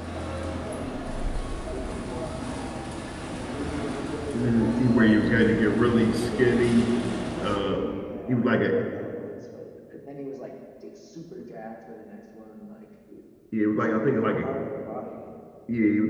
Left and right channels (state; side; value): identical; both; correlation 1.00